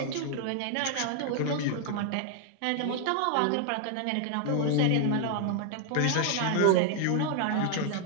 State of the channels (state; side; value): different; both; correlation 0.00